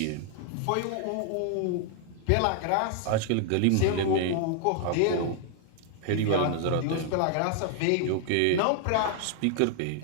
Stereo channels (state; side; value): different; both; correlation 0.00